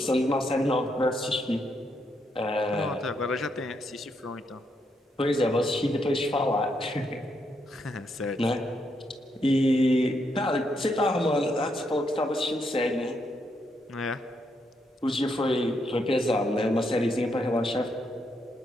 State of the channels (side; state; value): both; normal; correlation 0.78